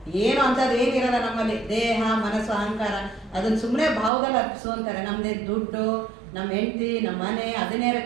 ಏನು ಅಂಥದ್ದು ಏನಿರಲ್ಲ ನಮ್ಮಲ್ಲಿ. ದೇಹ ಮನಸ್ಸು ಅಹಂಕಾರ ಅದನ್ನು ಸುಮ್ಮನೆ ಭಾವದಲ್ಲಿ ಅರ್ಪಿಸು ಅಂತಾರೆ. ನಮ್ಮದೇ ದುಡ್ಡು, ನಮ್ಮ ಹೆಂಡತಿ, ನಮ್ಮ ಮನೆ ಅದನ್ನೇರ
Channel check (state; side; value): drops out; left; at 4.1 s